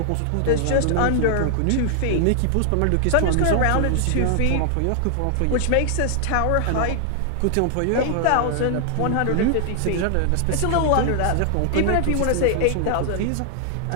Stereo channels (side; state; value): both; different; correlation -0.01